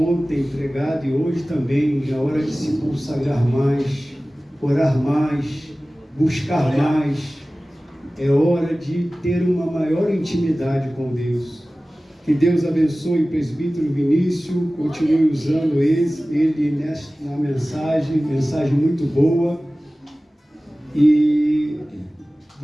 pregado e hoje também, é hora de se consagrar mais, orar mais, buscar mais. É hora de ter uma maior intimidade com Deus. Que Deus abençoe o presbítero Vinícius, continue usando ele na mensagem muito boa. E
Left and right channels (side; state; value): both; normal; correlation 0.97